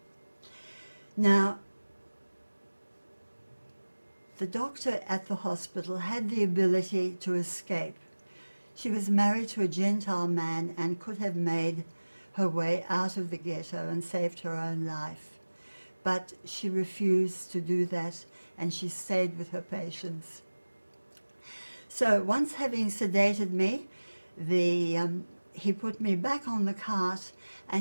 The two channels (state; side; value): inverted; both; correlation -1.00